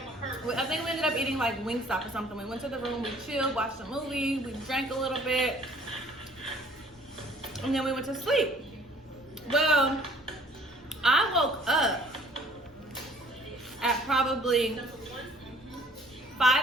I think we ended up eating like Wingstop or something. We went to the room, we chilled, watched a movie, we drank a little bit, and then we went to sleep. Well, I woke up at probably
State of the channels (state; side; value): normal; both; correlation 0.56